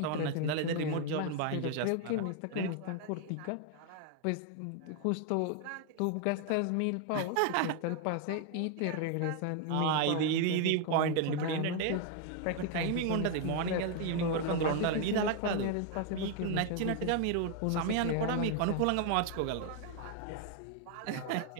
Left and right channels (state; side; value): different; both; correlation 0.00